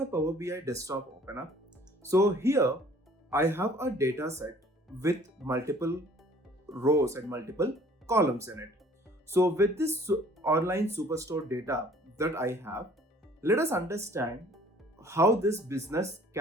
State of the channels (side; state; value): both; normal; correlation 0.55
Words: Power BI desktop open up. So here I have a data set with multiple rows and multiple columns in it. So with this online superstore data that I have, let us understand how this business